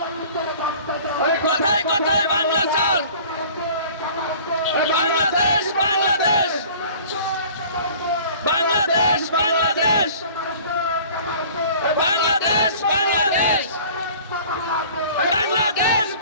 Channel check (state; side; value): inverted; both; correlation -0.47